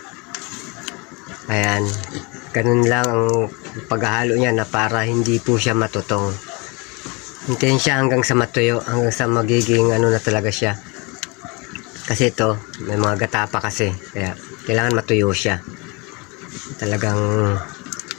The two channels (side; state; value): right; quieter; 28.7 dB